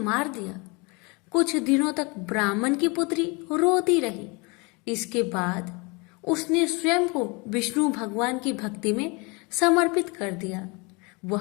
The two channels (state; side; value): quieter; right; 28.5 dB